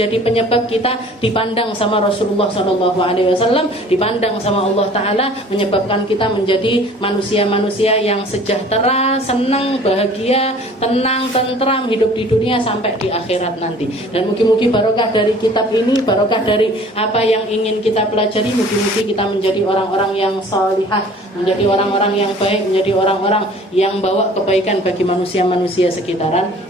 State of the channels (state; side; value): normal; both; correlation 0.49